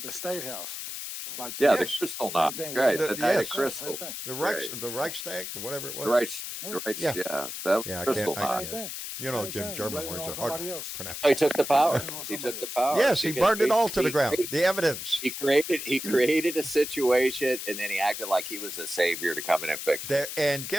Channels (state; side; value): noise; left; hiss, 7 dB below the sound